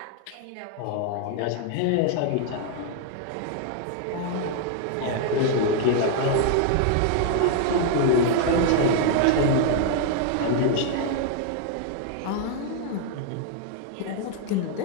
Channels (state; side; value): different; both; correlation 0.00